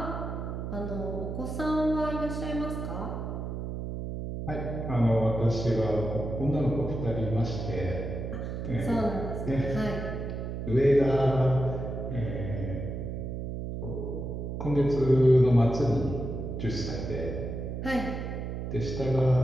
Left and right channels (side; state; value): right; noise; hum, 5 dB below the sound